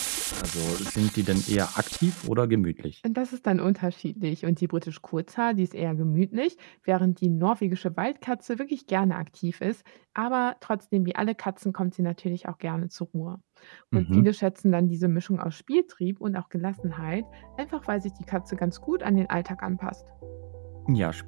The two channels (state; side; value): silent; left; digital silence